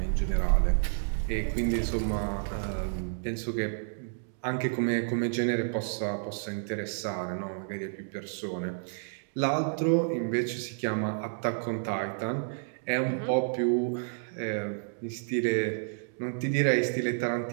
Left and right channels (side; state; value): left; silent; digital silence